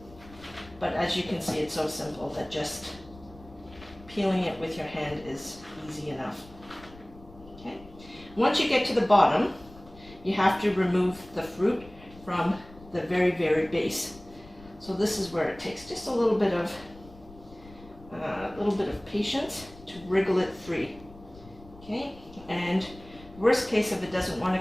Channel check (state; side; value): noise; left; rumble, 20 dB below the sound